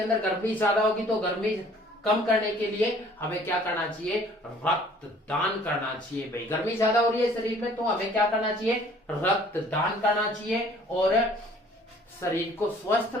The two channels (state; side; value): normal; both; correlation 0.54